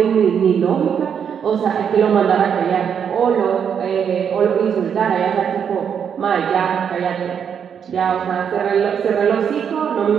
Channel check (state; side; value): quieter; left; 7.7 dB